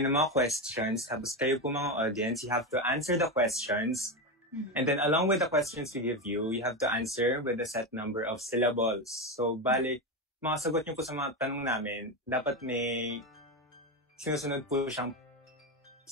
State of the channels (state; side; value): normal; both; correlation 0.14